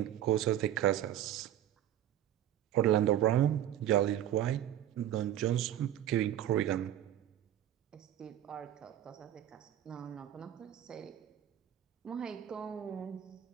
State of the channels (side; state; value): left; quieter; 11.7 dB